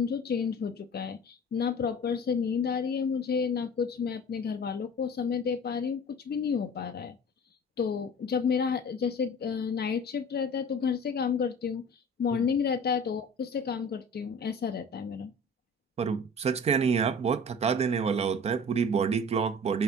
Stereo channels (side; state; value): both; normal; correlation 0.42